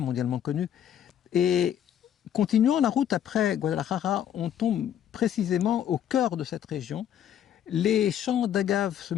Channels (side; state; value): right; quieter; 9.9 dB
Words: connue. Et continuant la route après Guadalajara, on tombe précisément au cœur de cette région. Les champs d'agaves se